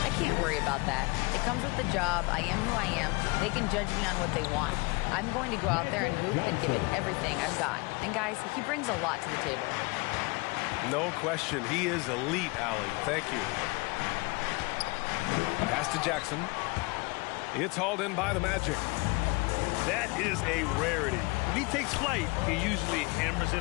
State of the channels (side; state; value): right; quieter; 26.6 dB